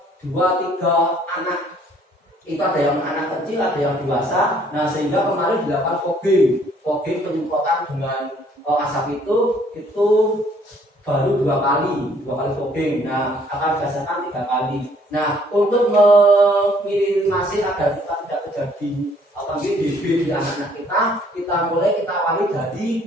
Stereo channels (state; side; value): normal; both; correlation 0.62